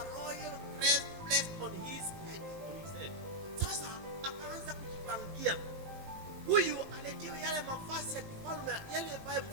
royal crest placed on his head. Sasa akaanza kujipangia. Huyu aletiwe yale mavazi ya kifalme, yale ambaye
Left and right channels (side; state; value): left; late; 19 ms